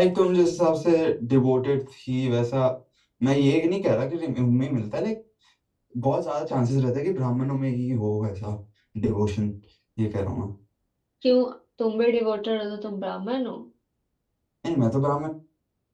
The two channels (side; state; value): both; identical; correlation 1.00